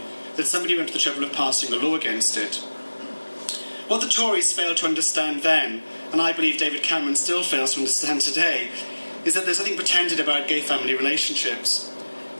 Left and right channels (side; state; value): both; inverted; correlation -1.00